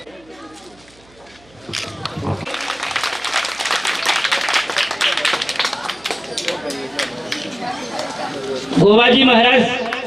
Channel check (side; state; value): right; noise; hum, 29 dB below the sound